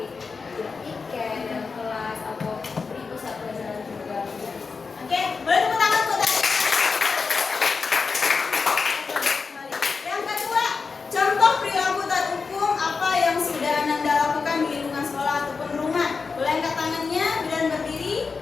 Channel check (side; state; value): right; quieter; 4.8 dB